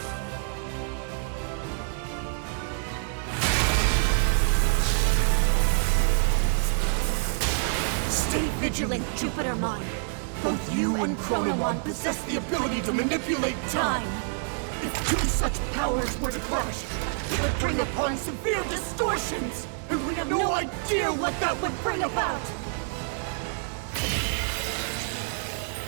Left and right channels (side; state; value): left; silent; 60 dB below the other